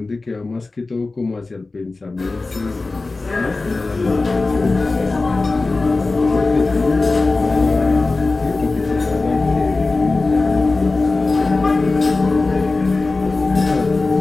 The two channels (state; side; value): quieter; right; 3.5 dB